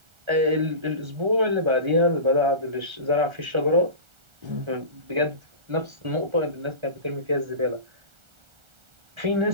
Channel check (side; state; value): left; late; 1.4 ms